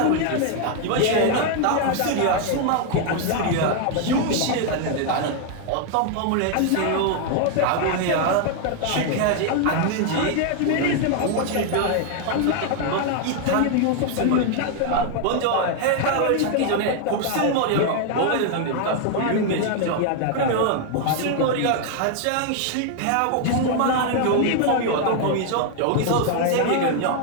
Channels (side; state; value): both; different; correlation 0.00